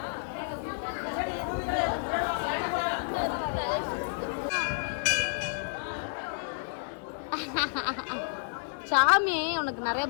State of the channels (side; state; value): right; silent; digital silence